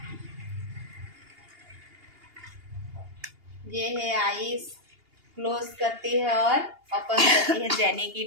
ये है आईज, क्लोज करती है और ओपन करती है जेनी की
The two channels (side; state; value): left; late; 2.8 ms